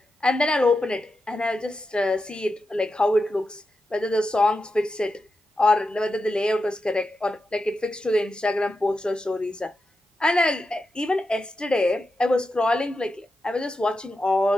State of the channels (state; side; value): normal; both; correlation 0.89